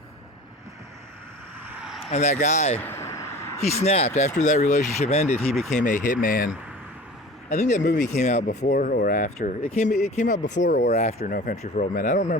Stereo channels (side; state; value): both; normal; correlation 0.40